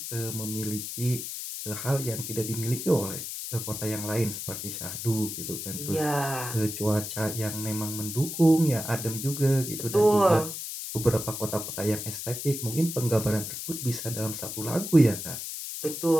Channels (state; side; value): noise; left; hiss, 6 dB below the sound